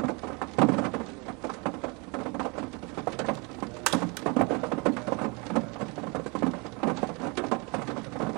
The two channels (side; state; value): left; quieter; 30.0 dB